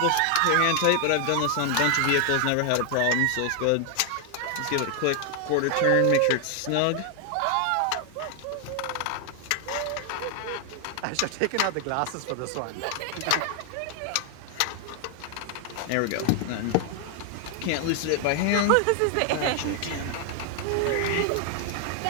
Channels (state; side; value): different; both; correlation 0.00